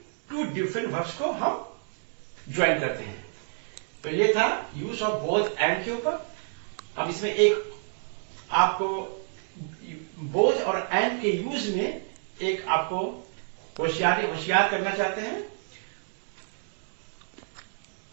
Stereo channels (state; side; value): silent; left; digital silence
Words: टू डिफरेंट वर्ब्स को हम ज्वाइन करते हैं। तो ये था यूज ऑफ बोथ एंड के ऊपर। अब इसमें एक आपको बोथ और एंड के यूज में एक आपको होशियार करना चाहते हैं,